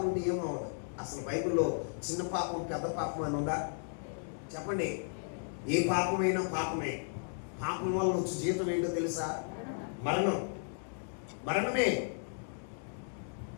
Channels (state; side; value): silent; right; digital silence